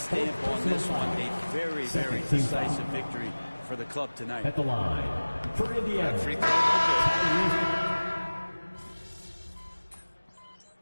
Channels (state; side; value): inverted; both; correlation -1.00